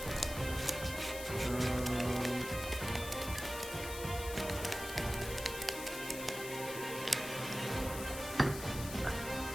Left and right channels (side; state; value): left; noise; hiss, 9 dB below the sound